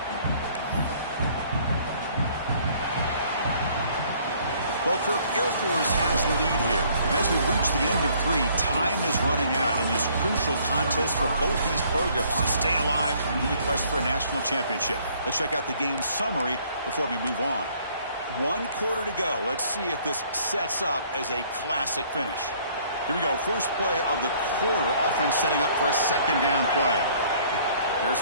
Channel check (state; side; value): inverted; both; correlation -0.60